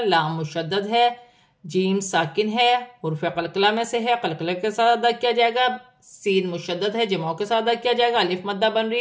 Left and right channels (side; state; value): both; identical; correlation 1.00